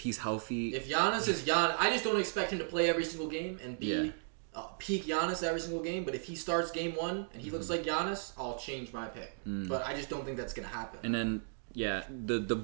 healthy. If Giannis is Giannis, I just don't expect him to play every single game and be peak Giannis every single game. But if he starts game 1 and he looks like Giannis, I'll change my pick. But I just don't think that's going to happen. And then, the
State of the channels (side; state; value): left; silent; digital silence